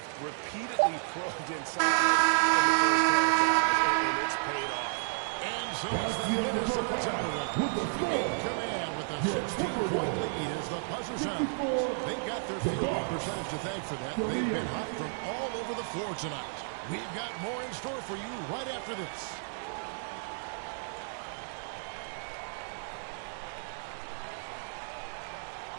repeatedly probed inside in the first half, and it's paid off. And so it's the Minnesota Timberwolves in command with a 16-point lead as the buzzer sounds. They've got their field goal percentage to thank for that. They've been hot from all over the floor tonight. We've got more in store for you right after this.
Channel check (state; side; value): silent; left; digital silence